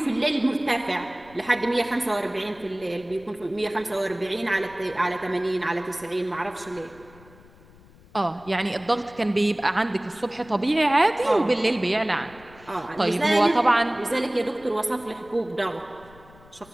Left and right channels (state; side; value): noise; left; rumble, 24 dB below the sound